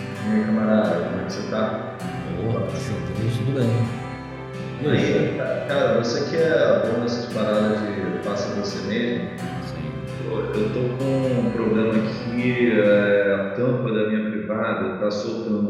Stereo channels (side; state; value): both; identical; correlation 1.00